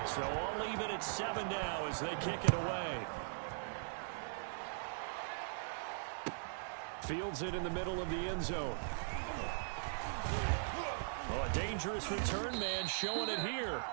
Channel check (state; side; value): silent; left; digital silence